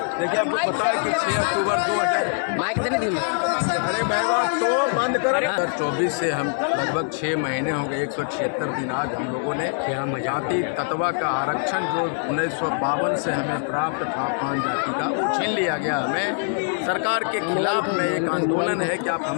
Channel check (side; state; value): right; silent; digital silence